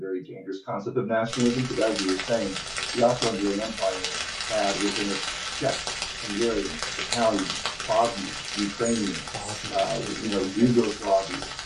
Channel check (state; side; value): identical; both; correlation 1.00